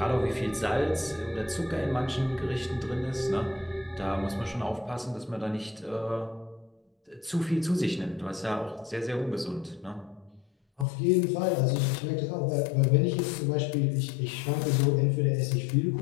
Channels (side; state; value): right; drops out; at 10.9 s